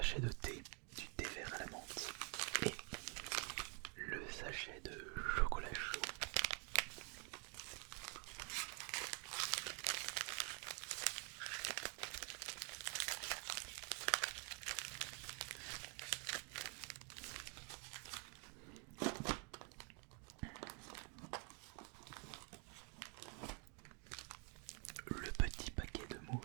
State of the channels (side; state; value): left; quieter; 37.0 dB